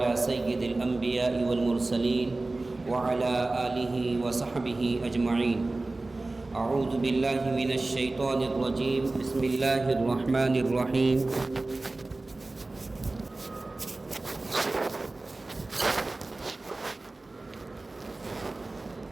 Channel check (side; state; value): left; quieter; 3.1 dB